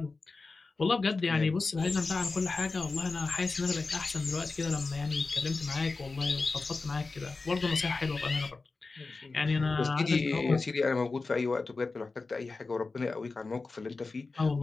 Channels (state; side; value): quieter; right; 3.9 dB